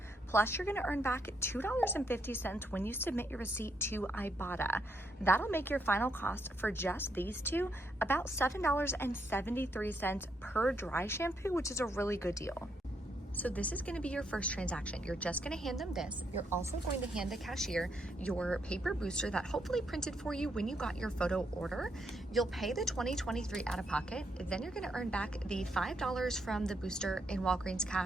plus you're going to earn back $2.50 when you submit your receipt to Ibotta. That'll make your final cost for just these two about $7.73 per dry shampoo, which is a really good deal. So this is going to be your first transaction. You're just going to hand them this. You're also going to hand the cashier your paper booster that hopefully printed for you when you got your photo order. You'll pay the $20.23 out of pocket. Then you're going to earn back the $5 from the booster in Walgreens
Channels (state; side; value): normal; both; correlation 0.77